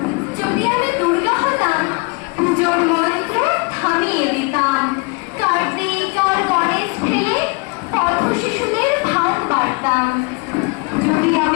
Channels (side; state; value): right; quieter; 28.9 dB